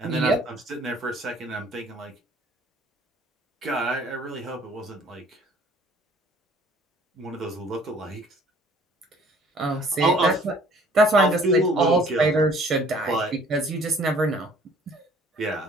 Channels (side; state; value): both; normal; correlation 0.56